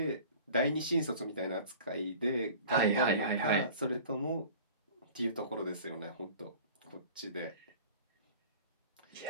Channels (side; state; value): both; inverted; correlation -0.43